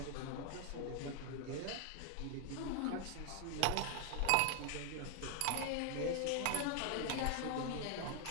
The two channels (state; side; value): different; both; correlation 0.00